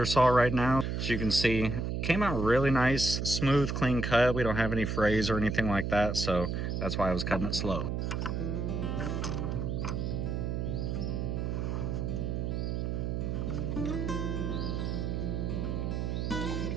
saw right now. As you can see, came out really nice, smooth, clean cut. We don't have any frays or anything like that, so that's why I was cutting it slow.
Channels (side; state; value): right; noise; hum, 1 dB below the sound